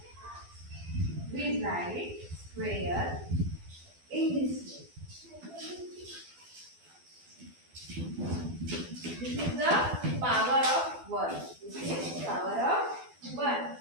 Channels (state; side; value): late; left; 12 ms